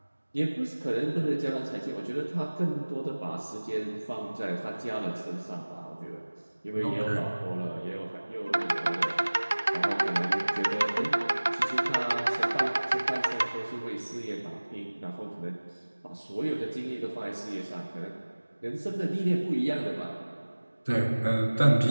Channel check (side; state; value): both; inverted; correlation -1.00